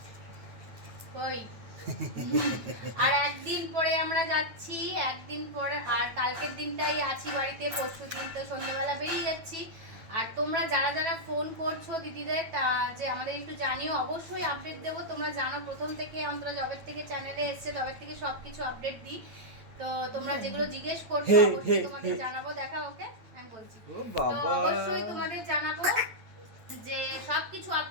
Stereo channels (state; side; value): late; left; 9.0 ms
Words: কই আর একদিন পরে আমরা যাচ্ছি, একদিন পরে, আর কালকের দিনটাই আছি বাড়িতে, পরশু দিন তো সন্ধ্যাবেলা বেরিয়ে যাচ্ছি। আর তোমরা যারা যারা ফোন করছো দিদিদের, যে আমাদের একটু জানিও, অবশ্যই আপডেট দেবো। তোমরা জানো প্রথম থেকে, অন্তত জবের থেকে চ্যানেলে এসছে, তবের থেকে সব কিছু আপডেট দিই। তো তোমরা যেগুলো জিজ্ঞেস করছো অবশ্যই তোমাদের জানাবো। দেখা ওকে আমি বলছি, ও তো বাবা, অবশ্যই তোমাদের জানাবো যে সবকিছু